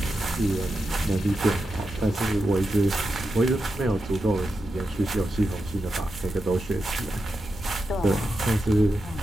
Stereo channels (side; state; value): both; normal; correlation 0.88